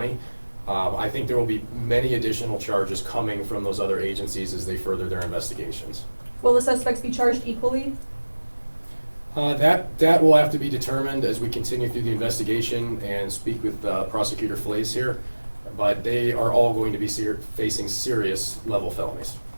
I think there will be many additional charges coming from those other agencies as they further their investigations. Will the suspects be charged equally? That will have to be determined as we continue through the investigation and speak with Prosecutor Flays here. But they are all going to be facing serious level felonies.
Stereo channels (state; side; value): inverted; both; correlation -1.00